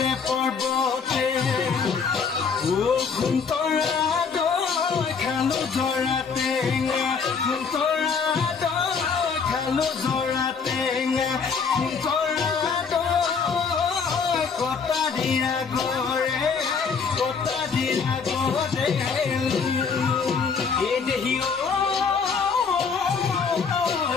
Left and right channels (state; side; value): quieter; right; 5.6 dB